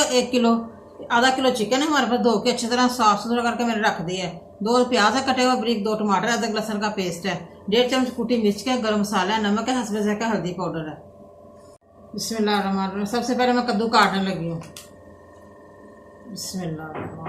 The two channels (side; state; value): both; identical; correlation 1.00